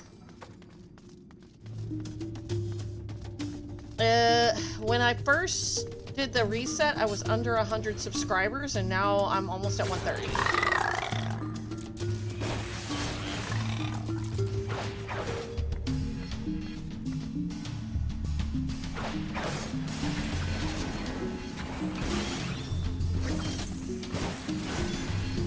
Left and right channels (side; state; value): both; identical; correlation 1.00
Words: when I first did the reset, I was under 100 subscribers, and now I'm almost at 130.